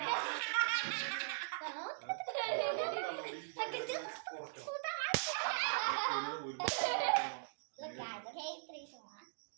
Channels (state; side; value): silent; left; digital silence